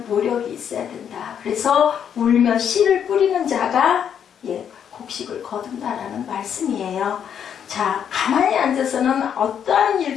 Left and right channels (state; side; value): quieter; right; 8.4 dB